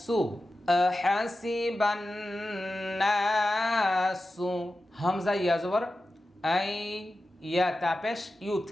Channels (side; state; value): both; normal; correlation 0.93